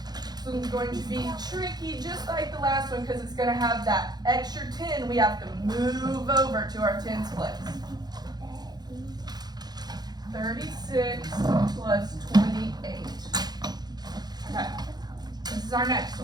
one's going to be tricky, just like the last one, because it's going to have that extra 10 we have to move over to our 10s place. 36 plus 28. Okay, this is our next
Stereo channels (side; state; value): left; late; 0.20 ms